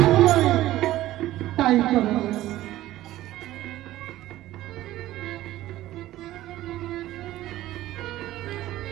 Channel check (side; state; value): left; quieter; 15.1 dB